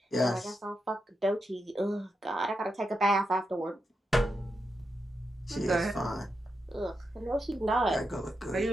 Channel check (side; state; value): both; normal; correlation 0.86